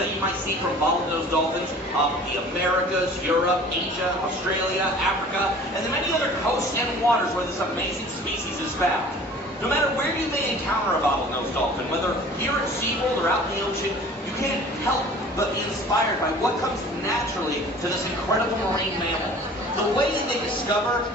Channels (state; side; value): normal; both; correlation 0.46